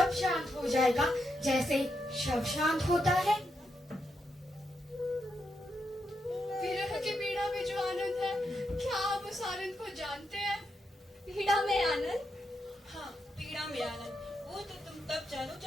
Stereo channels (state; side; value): normal; both; correlation 0.83